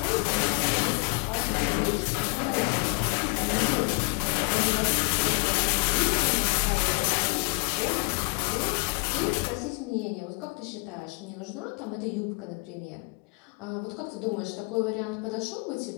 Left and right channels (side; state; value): right; quieter; 33.3 dB